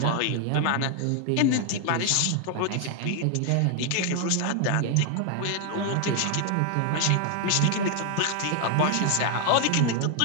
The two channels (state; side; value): different; both; correlation 0.01